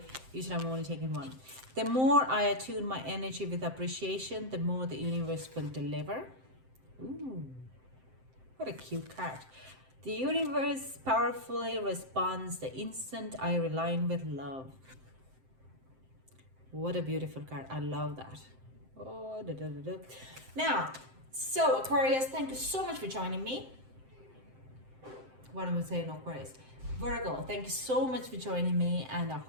Usually I'm only taking one. The more I attune my energy with appreciation, the more the universe will deliver. Ooh, what a cute card. The universe powerfully responds the instant I align with love. What a beautiful card. I love that. Oh, da, da, da, da. Now, so Aquarius, thank you so much for joining me. What am I saying, Aquarius? Virgo, thank you so much for joining me, and I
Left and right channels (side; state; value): left; late; 7.7 ms